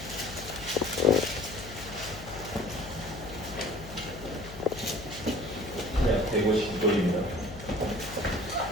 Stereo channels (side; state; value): left; noise; hum, 14 dB below the sound